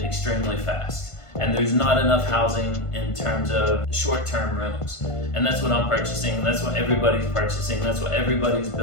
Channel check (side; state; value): right; late; 1.5 ms